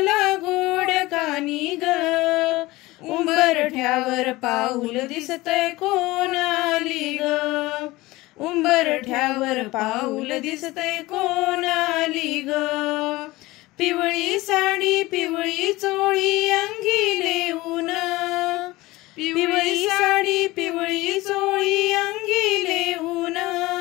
गोड कानी ग. उंबरठ्यावर पाऊल दिसतय कोण आली ग, उंबरठ्यावर पाऊल दिसतय कोण आली ग. पिवळी साडी पिवळी चोळी अंगी लेऊन, पिवळी साडी पिवळी चोळी अंगी लेऊन.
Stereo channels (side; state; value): right; quieter; 19.9 dB